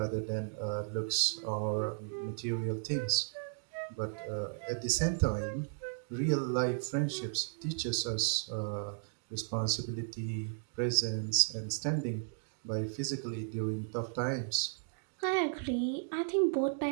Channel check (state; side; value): silent; left; digital silence